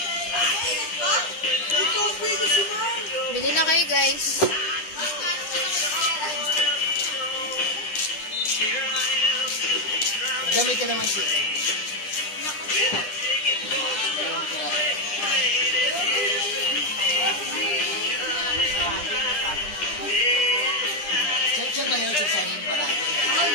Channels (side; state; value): right; late; 9.9 ms